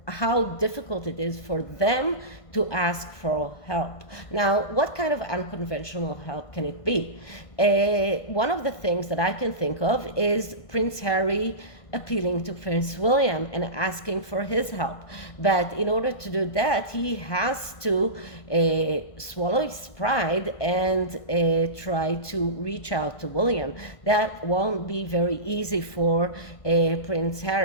how difficult it is for them to ask for help. Now, what kind of unconventional help can it be? One of the things that I can think of is Prince Harry appealing to Prince William and asking for his help. But in order to do that, he has to swallow his pride and try to reach out to William. That won't be very easy for Prince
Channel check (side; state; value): right; late; 1.5 ms